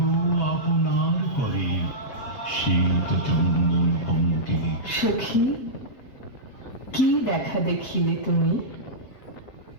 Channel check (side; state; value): right; late; 7.2 ms